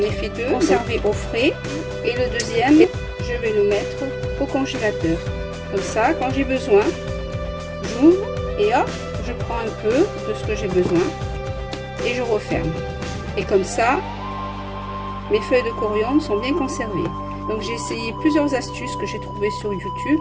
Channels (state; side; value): identical; both; correlation 1.00